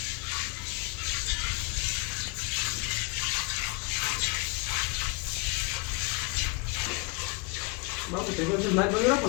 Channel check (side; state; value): right; quieter; 29.4 dB